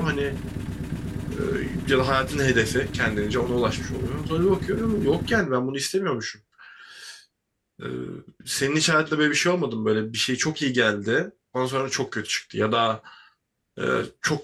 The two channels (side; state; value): both; identical; correlation 1.00